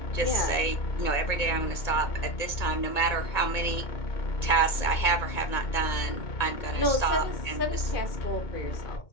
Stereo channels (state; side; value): late; right; 2.2 ms